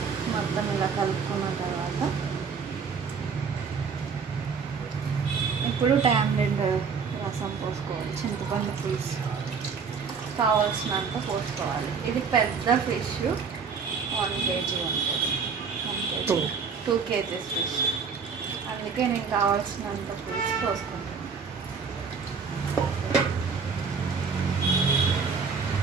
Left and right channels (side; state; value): left; quieter; 5.7 dB